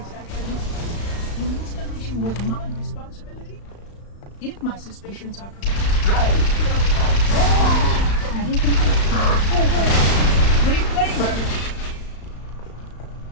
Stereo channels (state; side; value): late; right; 35 ms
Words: The installation was my responsibility. If my suspicions are correct. Reclaimer!